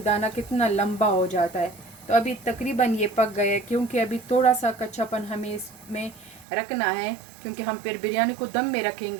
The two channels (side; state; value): left; drops out; at 6.5 s